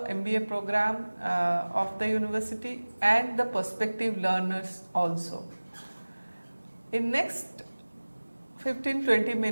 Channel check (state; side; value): inverted; both; correlation -1.00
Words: MBA program of the university and the prospective learners also. In next 15-20